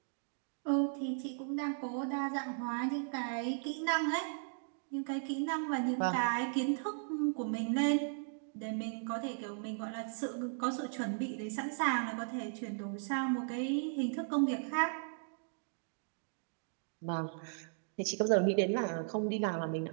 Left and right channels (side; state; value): left; silent; digital silence